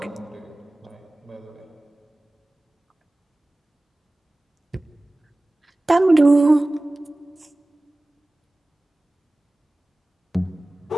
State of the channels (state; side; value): normal; both; correlation 0.98